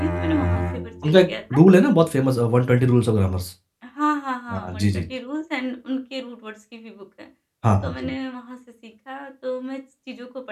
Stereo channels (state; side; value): identical; both; correlation 1.00